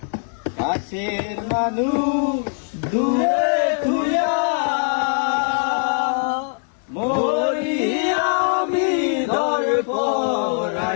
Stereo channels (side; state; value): right; silent; 57 dB below the other